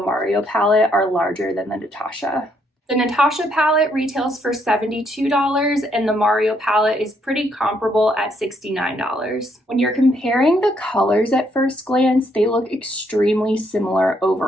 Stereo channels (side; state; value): both; normal; correlation 0.72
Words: palette are larger than the Natasha. The Natasha palette retails for $72 and the Mario palette is pretty comparable at $69. When you're comparing the colors at first glance, they look extremely similar